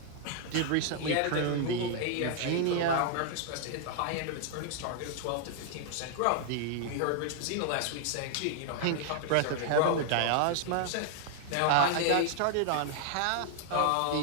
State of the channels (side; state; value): both; different; correlation 0.00